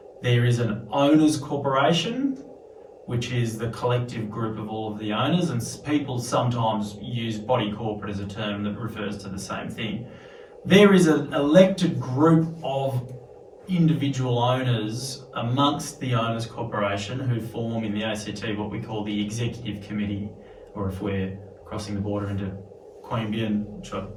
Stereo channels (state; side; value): identical; both; correlation 1.00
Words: There is an owners corporation, which is the collective group of all of the owners, and people sometimes use body corporate as a term that refers to the same thing. There is an elected group of individual owners amongst the owners corporation who form in the ACT what we call the executive committee, or if we're crossing the border into Queanbeyan, which I